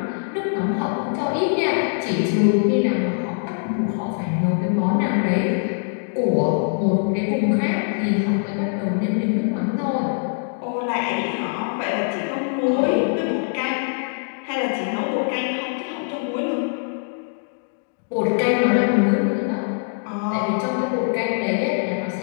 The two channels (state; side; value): silent; right; 64 dB below the other